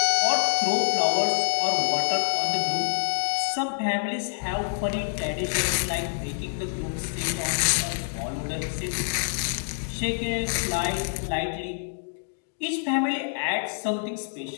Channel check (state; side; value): silent; right; digital silence